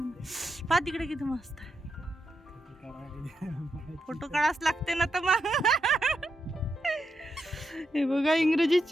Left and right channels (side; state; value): both; normal; correlation 0.84